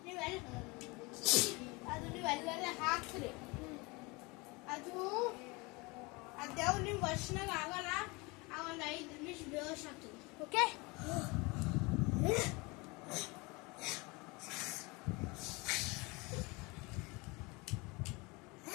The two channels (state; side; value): quieter; right; 26.1 dB